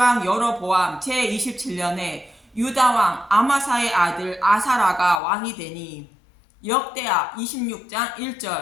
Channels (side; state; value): right; drops out; at 5.2 s